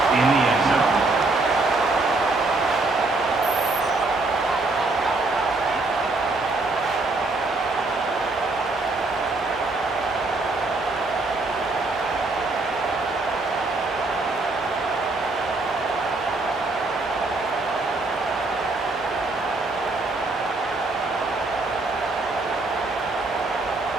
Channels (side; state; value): left; quieter; 3.3 dB